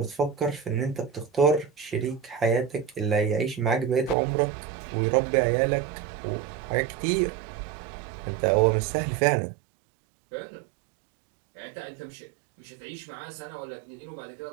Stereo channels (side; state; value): left; drops out; at 4.2 s